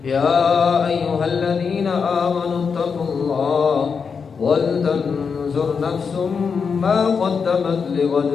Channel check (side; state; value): right; quieter; 5.8 dB